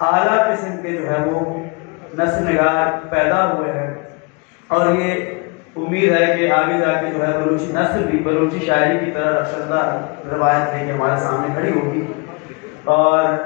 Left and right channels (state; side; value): quieter; right; 30.6 dB